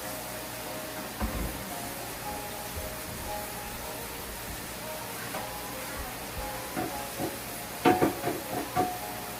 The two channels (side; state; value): both; identical; correlation 1.00